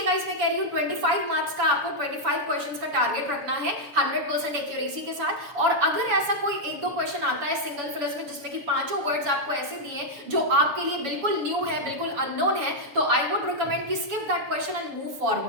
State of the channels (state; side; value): late; left; 7.0 ms